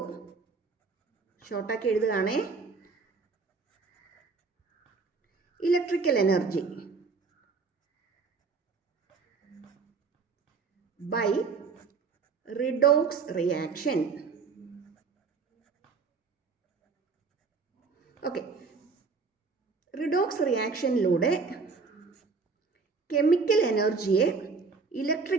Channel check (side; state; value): left; quieter; 4.7 dB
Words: ഷോർട്ടാക്കി എഴുതുകയാണേ, electrical energy by redox reaction. Okay, redox റിയാക്ഷനിലൂടെ chemical എനർജിയെ